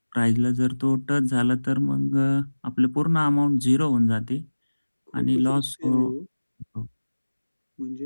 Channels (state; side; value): inverted; both; correlation -1.00